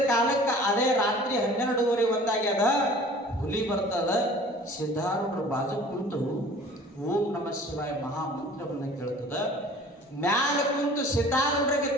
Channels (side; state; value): both; normal; correlation 0.47